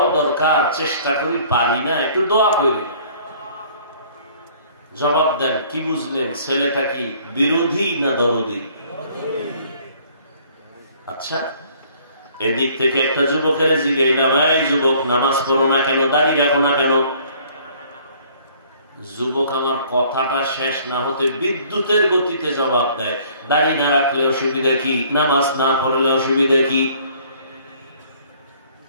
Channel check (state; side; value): inverted; both; correlation -0.57